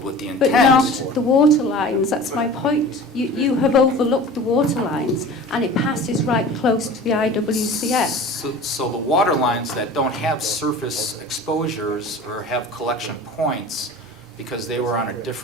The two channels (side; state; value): both; normal; correlation 0.39